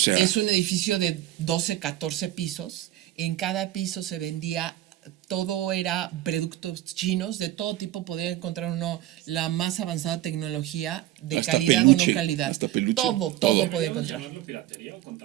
es un edificio de 12, 14 pisos. En cada piso se vendía, todo era productos chinos, de todo tipo. Podía encontrar uno la más avanzada tecnología, de hasta calidad peluche, o no calidad. Todo podía encontrar. ¿Piratería o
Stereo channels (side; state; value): left; quieter; 14.1 dB